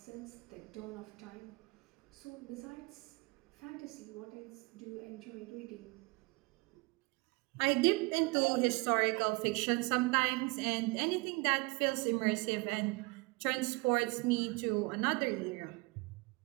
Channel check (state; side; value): quieter; left; 26.2 dB